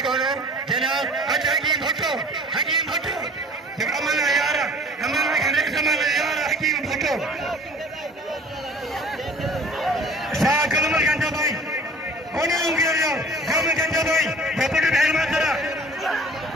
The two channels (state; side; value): normal; both; correlation 0.48